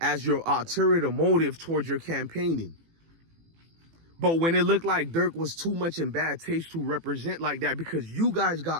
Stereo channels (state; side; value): late; left; 18 ms